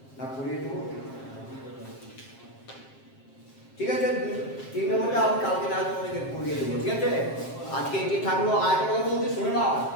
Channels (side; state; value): right; late; 7.5 ms